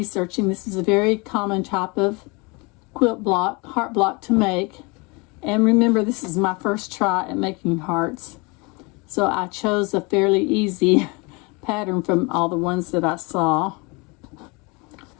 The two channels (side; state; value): right; quieter; 28.3 dB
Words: this is a very common type of quilt block, heart block to make. And remember, this is my first try at making hearts. So I chose a fairly easy pattern from all the ones that I saw.